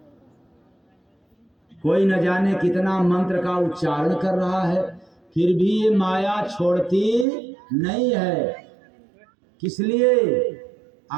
कोई न जाने कितना मंत्र का उच्चारण कर रहा है, फिर भी ये माया छोड़ती नहीं है। किस लिए?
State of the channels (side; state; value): left; drops out; at 7.2 s